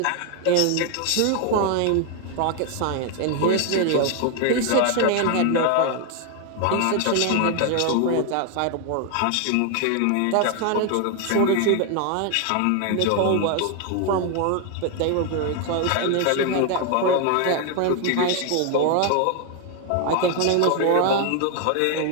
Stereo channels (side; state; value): both; different; correlation 0.01